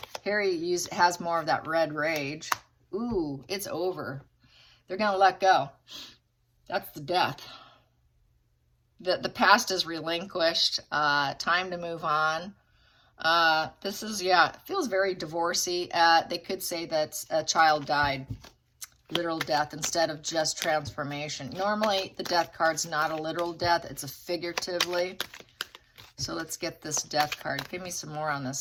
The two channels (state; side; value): identical; both; correlation 1.00